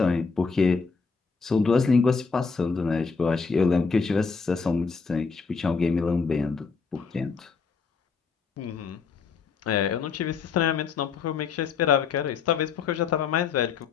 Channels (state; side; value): quieter; right; 5.2 dB